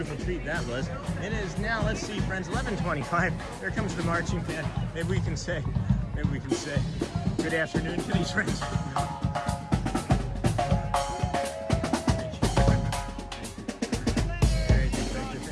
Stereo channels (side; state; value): both; identical; correlation 1.00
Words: treat that was. It is now, let's see, friends, 11:25. There comes the marching band. Maybe we can say good afternoon to these friends.